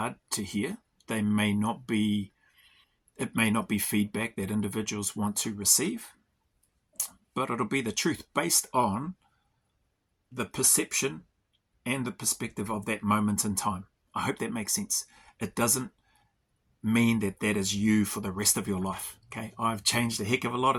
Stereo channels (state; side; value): identical; both; correlation 1.00